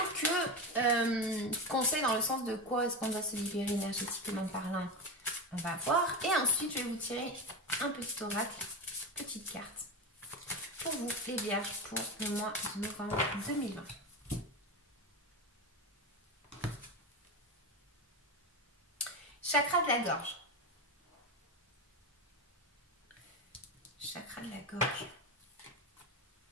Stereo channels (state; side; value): normal; both; correlation 0.18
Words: que conseil dans le sens de quoi est-ce qu'on doit se libérer énergétiquement parlant, on va voir. Et ensuite, je vais vous tirer un petit oracle, petite carte, pour vous, les vierges, pour le mois de novembre 2020. Chakra de la gorge. Chakra de la gorge.